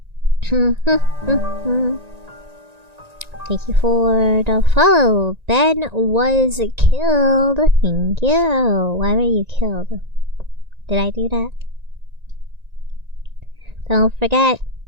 Thank you for the follow. Ben was killed. Thank you. Why were you killed? Did I do that? Don't forget,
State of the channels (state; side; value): late; left; 1.9 ms